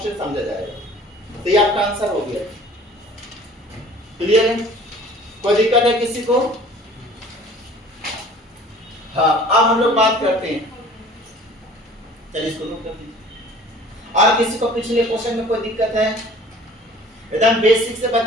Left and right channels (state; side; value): normal; both; correlation 0.48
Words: समझा जाएगा। तो ये आपका आंसर हो गया, क्लियर है, कोई दिक्कत है किसी को। हाँ, अब हम लोग बात करते हैं, चलिए इसको नोट कर दीजिए। और किसी को पिछले क्वेश्चन में कोई दिक्कत है, एकदम बेसिक से